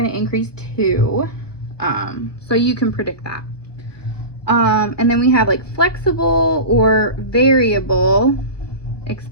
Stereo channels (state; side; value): late; right; 1.2 ms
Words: to increase to. So you can predict that. And then we have like flexible or variable